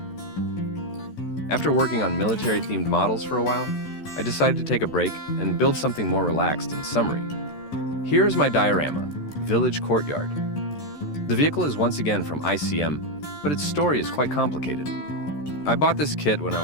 After working on military-themed models for a while, I decided to take a break and build something more relaxed and summery. Here is my diorama, Village Courtyard. The vehicle is once again from ICM, but its story is quite complicated. I bought this kit when I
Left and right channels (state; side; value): late; right; 13 ms